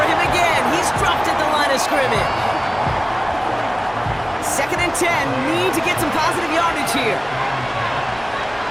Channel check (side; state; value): left; noise; hum, 21 dB below the sound